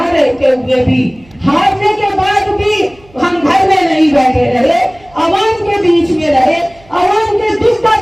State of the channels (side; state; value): right; noise; hum, 28 dB below the sound